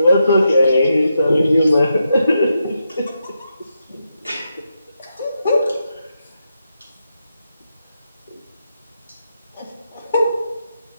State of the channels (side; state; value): both; inverted; correlation -0.85